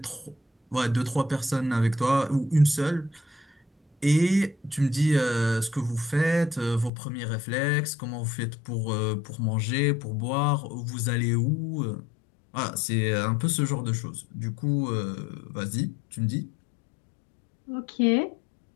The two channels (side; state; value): right; drops out; at 6.9 s